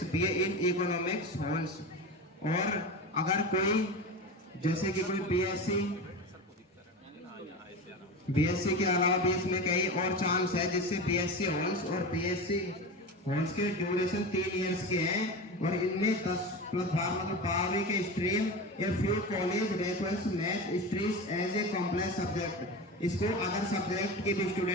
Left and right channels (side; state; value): both; normal; correlation 0.26